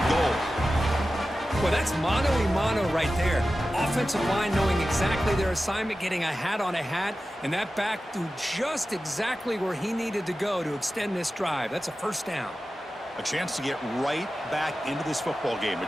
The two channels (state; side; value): normal; both; correlation 0.94